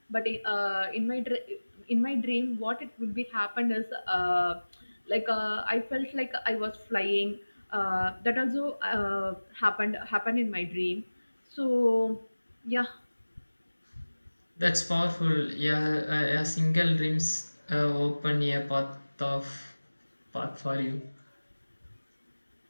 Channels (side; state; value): both; inverted; correlation -1.00